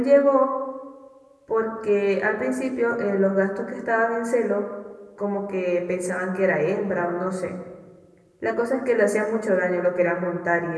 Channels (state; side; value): identical; both; correlation 1.00